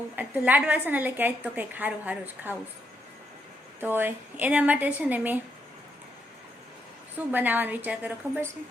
લાડવા છે ને એટલે કે આજ તો કંઈક સારું સારું જ ખાવું. તો એના માટે છે ને મેં શું બનાવવાનો વિચાર કર્યો ખબર છે?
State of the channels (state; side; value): normal; both; correlation 0.79